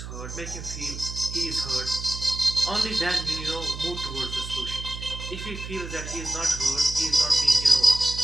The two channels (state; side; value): noise; right; hum, 9 dB below the sound